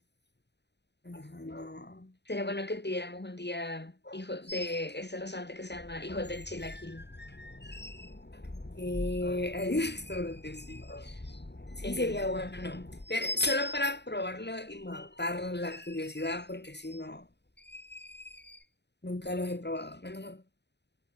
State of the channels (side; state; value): right; late; 0.50 ms